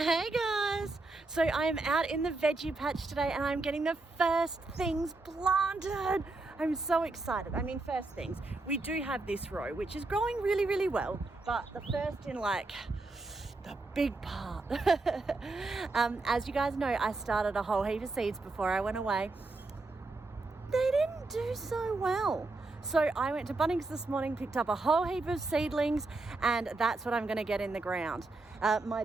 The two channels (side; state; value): left; quieter; 3.3 dB